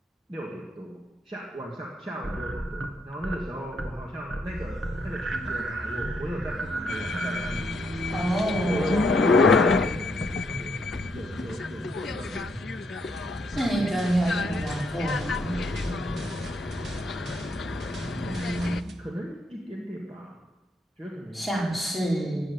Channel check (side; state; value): both; normal; correlation 0.74